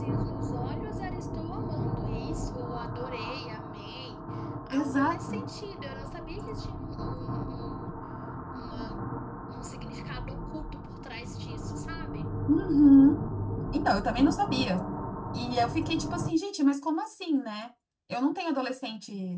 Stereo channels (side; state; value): both; identical; correlation 1.00